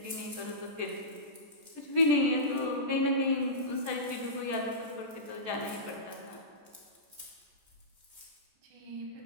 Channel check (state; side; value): late; left; 14 ms